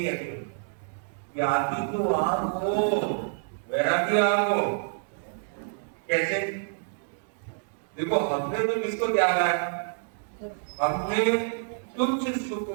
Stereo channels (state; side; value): silent; left; digital silence